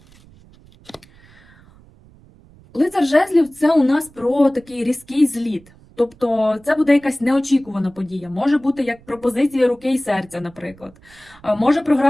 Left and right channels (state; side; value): noise; right; rumble, 26 dB below the sound